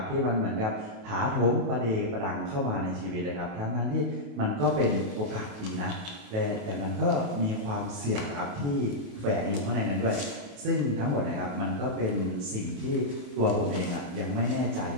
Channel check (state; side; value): late; left; 28 ms